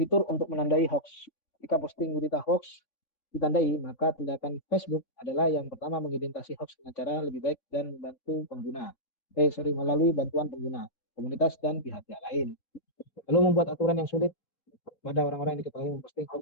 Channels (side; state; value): right; late; 3.6 ms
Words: untuk menandai hoax. Jika posting berita hoax ditandai, maka tindakan Facebook adalah yang pertama mengidentifikasi hoax dengan cara lebih baik dan membantu pengguna. Melalui bantuan pengguna, komunitas dan pihak-pihak lain. Lalu membuat aturan yang sulit pada orang-orang yang diketahui memposting